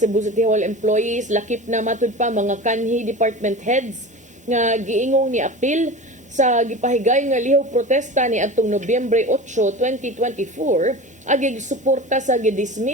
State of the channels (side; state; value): both; normal; correlation 0.32